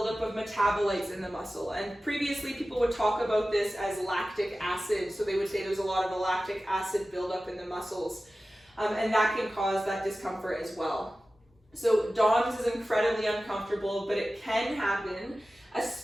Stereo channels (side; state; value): both; normal; correlation 0.95